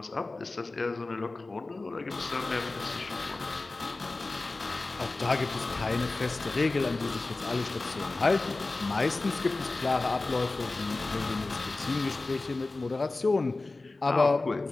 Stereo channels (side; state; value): right; quieter; 3.3 dB